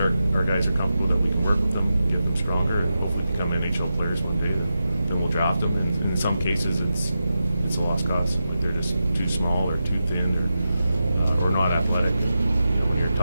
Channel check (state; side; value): inverted; both; correlation -0.90